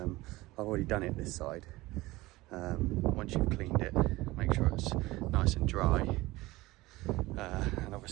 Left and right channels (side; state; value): left; quieter; 19.7 dB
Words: already done it this side. Once you've cleaned it, make sure it's nice and dry, and